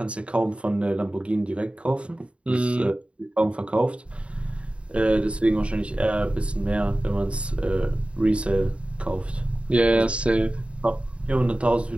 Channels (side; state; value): left; late; 0.060 ms